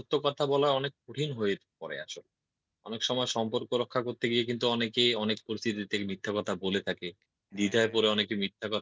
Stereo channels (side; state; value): both; identical; correlation 1.00